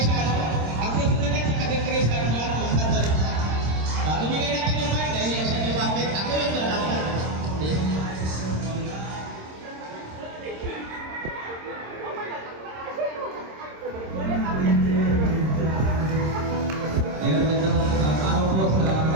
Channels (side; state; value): left; late; 26 ms